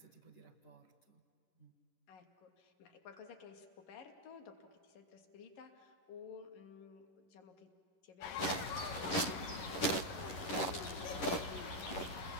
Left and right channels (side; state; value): right; late; 11 ms